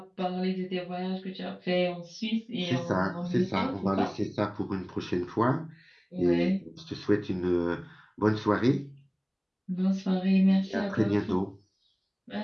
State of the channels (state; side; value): identical; both; correlation 1.00